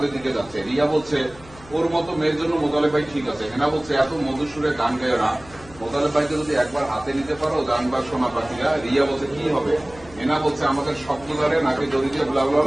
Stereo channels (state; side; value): noise; left; hum, 21 dB below the sound